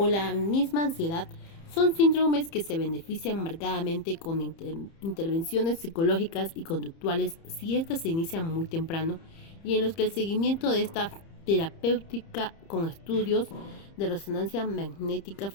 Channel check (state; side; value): late; right; 30 ms